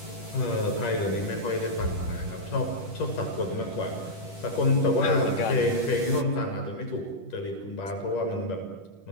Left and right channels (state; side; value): late; right; 10 ms